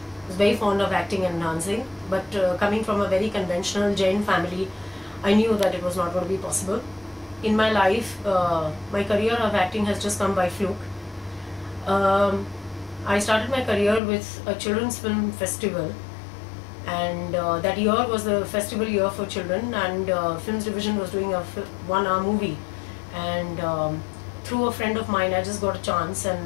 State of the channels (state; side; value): drops out; right; at 14.0 s